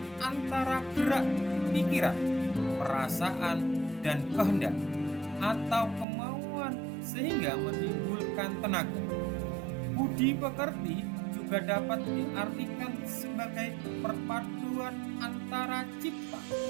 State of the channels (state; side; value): drops out; left; at 6.1 s